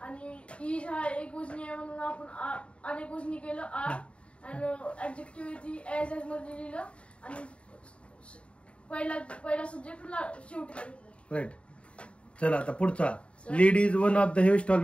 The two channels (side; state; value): right; late; 0.060 ms